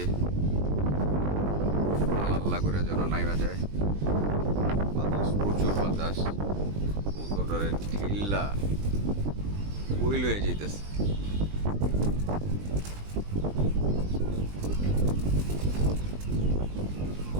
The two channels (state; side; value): late; left; 20 ms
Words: আল্লাহ করে যেন নাইমা যায়, বাতাস, প্রচুর বাতাস, কবুতরের ঢিল্লা উইল হয়ে যেতেছে।